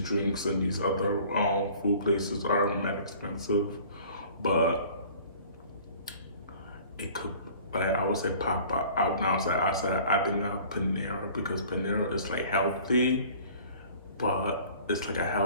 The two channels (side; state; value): both; inverted; correlation -0.48